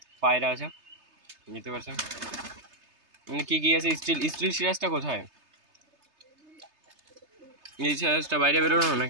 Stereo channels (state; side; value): late; left; 3.3 ms